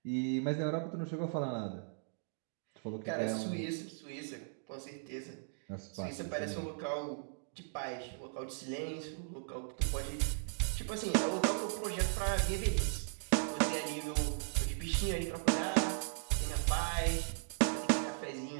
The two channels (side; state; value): left; silent; digital silence